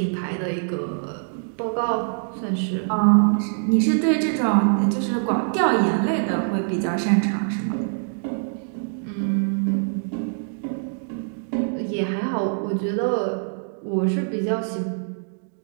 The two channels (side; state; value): left; silent; digital silence